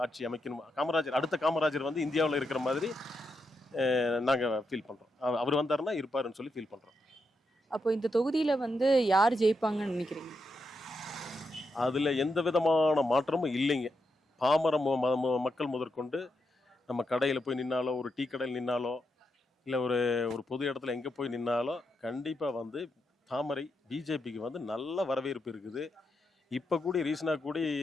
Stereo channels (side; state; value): both; normal; correlation 0.84